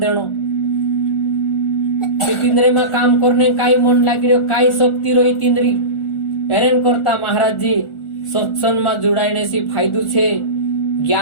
तिंद्रे में काम करने काई मन लागी रो काई शक्ति रही तिंद्री हेरेन करता महाराज जी सत्संग में जुड़ाईने सी फायदो छे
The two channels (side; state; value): right; late; 1.4 ms